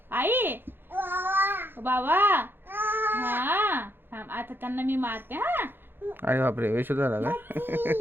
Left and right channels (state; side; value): late; left; 0.10 ms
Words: आई बाबा हा. आता त्यांना मी मारते हा. अरे बापरे, वेश झाला का?